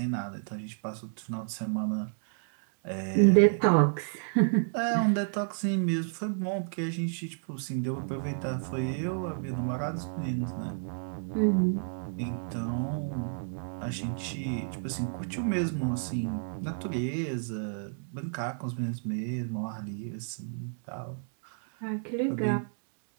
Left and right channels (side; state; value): left; silent; digital silence